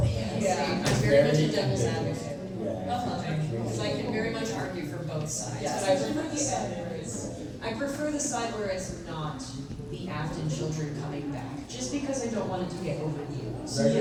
that. Yeah, I'm very much a devil's advocate. Yeah. Because I can very much argue for both sides. But I prefer the side where it's, I prefer the side where it's not the Afton children coming back, just because I don't want it to get overused.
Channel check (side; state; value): both; identical; correlation 1.00